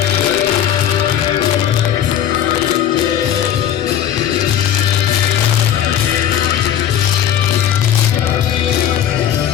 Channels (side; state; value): right; quieter; 10.2 dB